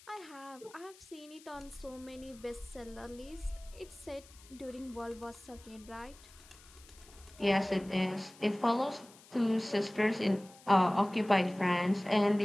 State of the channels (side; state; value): left; noise; hiss, 23 dB below the sound